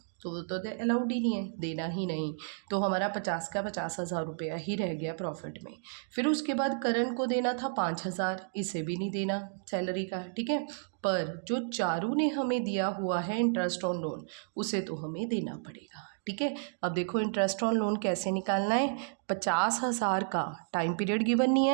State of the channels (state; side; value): silent; left; digital silence